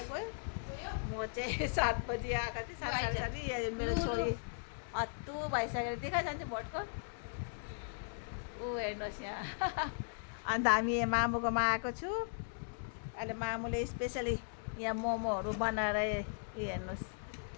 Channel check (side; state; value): right; silent; digital silence